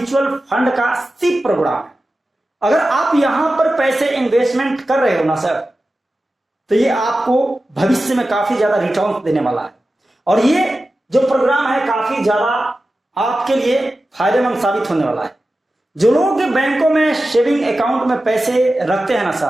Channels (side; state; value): both; normal; correlation 0.94